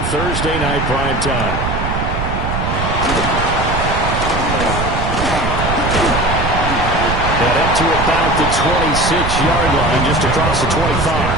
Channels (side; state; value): right; noise; rumble, 3 dB below the sound